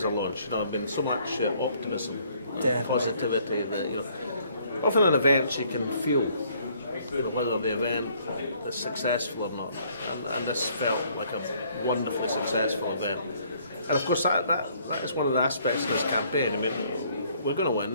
a launch. You know, I've been so much optimism, positivity that, you know, often in events you can feel whether the event is successful or not, and this felt like a wonderfully successful event. And of course that is one of the aspects of this campaign. I mean, we're going to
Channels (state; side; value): inverted; both; correlation -0.63